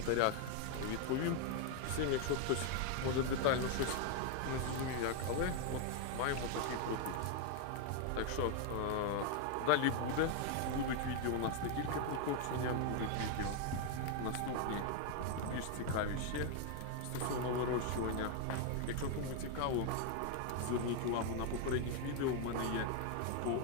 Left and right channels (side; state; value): both; different; correlation 0.01